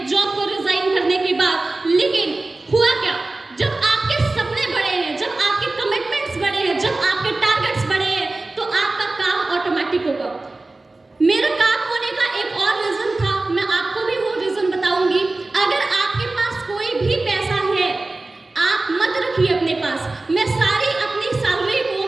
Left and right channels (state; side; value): quieter; left; 3.1 dB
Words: जॉब को रिजाइन करने के बाद। लेकिन हुआ क्या, जब आपके सपने बड़े हैं, जब आपके कमिटमेंट्स बड़े हैं, जब आपके टारगेट्स बड़े हैं, तो आपका काम ऑटोमेटिक होगा। मेरा काम होने का एक और रीजन था, मैं आपको भी वो रीजन बताऊंगी। अगर आपके पास कोई भी पैसा है, आप मत रखिए अपने पास। मैं सारी अपनी सैलरी